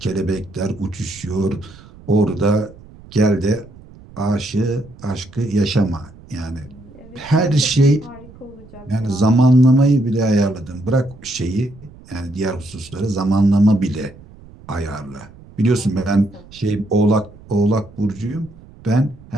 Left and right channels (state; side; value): noise; right; rumble, 21 dB below the sound